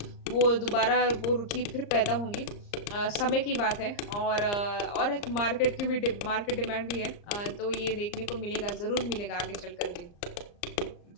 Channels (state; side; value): late; right; 34 ms